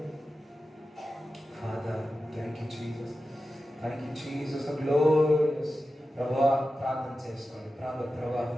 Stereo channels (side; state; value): both; normal; correlation 0.93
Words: Father, thank you, Jesus. Thank you, Jesus. The glorious. ప్రభా ప్రార్థన చేసుకోండి. ప్రభా